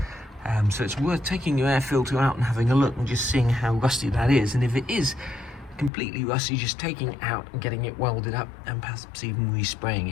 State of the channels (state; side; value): drops out; right; at 5.9 s